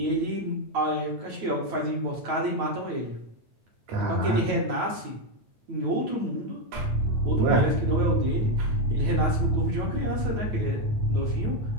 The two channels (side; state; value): left; late; 9.1 ms